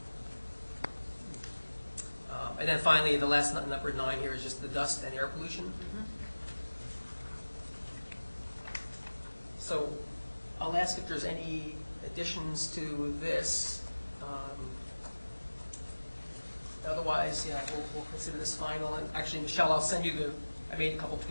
And then finally, the last number 9 here is just the dust and air pollution. So I'll ask if there's any additions to this. Otherwise, yeah, we'll consider this final. And actually, Michelle, I'll send you I made a couple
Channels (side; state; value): both; inverted; correlation -1.00